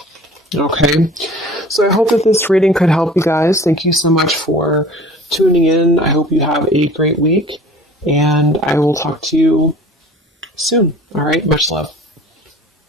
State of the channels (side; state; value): both; normal; correlation 0.45